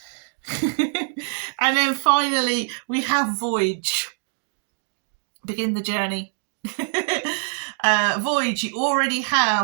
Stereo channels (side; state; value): left; silent; digital silence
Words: And then finally we have Voyage. Begin the journey. Voyage, you already